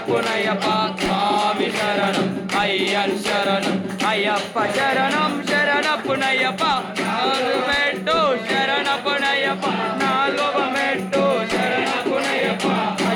స్వామి శరణం అయ్యన్ శరణం అయ్యప్ప శరణం శరణపునయ్యప్ప నాలుగు మెట్టు శరణపునయ్యప్ప నాలుగవ మెట్టు శరణపునయ్యప్ప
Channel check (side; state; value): both; identical; correlation 1.00